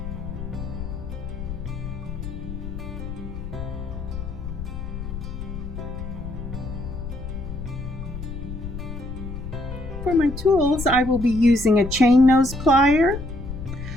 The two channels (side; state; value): left; noise; rumble, 8 dB below the sound